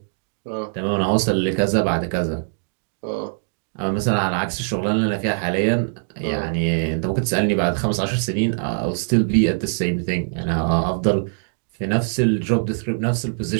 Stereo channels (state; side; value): silent; left; digital silence